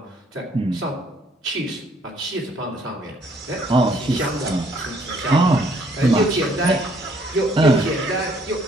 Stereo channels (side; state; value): both; normal; correlation 0.64